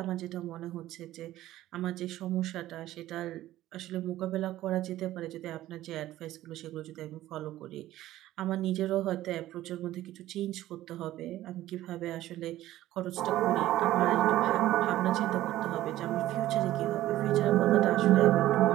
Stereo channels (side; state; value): left; quieter; 14.7 dB